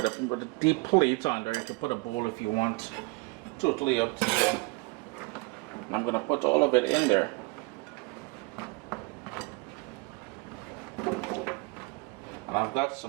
a deep plate under. You can put a bowl if you want. Totally up to you. And I'm going to put all of it in there. And I've got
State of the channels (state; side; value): quieter; left; 26.4 dB